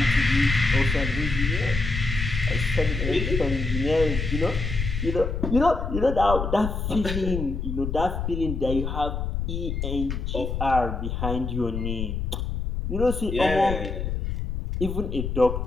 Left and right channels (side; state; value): left; noise; rumble, 3 dB below the sound